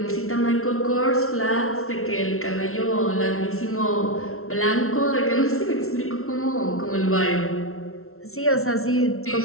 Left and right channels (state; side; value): late; right; 0.62 ms